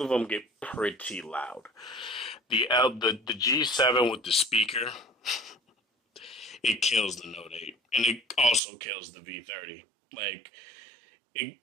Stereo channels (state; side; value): drops out; left; at 8.6 s